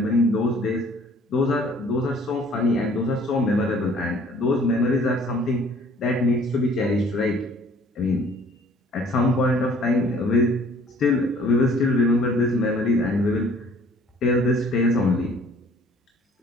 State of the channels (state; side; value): normal; both; correlation 0.55